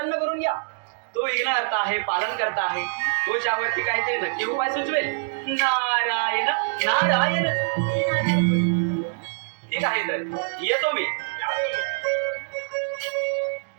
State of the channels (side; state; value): left; silent; digital silence